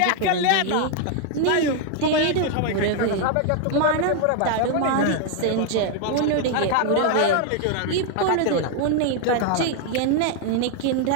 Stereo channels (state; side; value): different; both; correlation 0.00